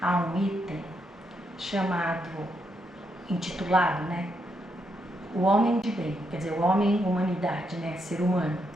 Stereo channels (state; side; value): normal; both; correlation 0.79